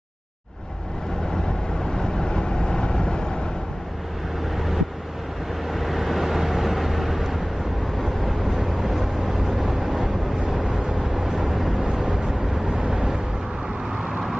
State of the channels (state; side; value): normal; both; correlation 0.98